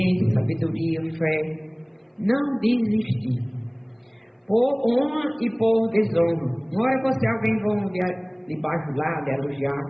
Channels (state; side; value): identical; both; correlation 1.00